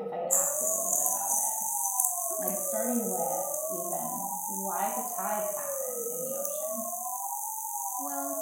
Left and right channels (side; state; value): both; identical; correlation 1.00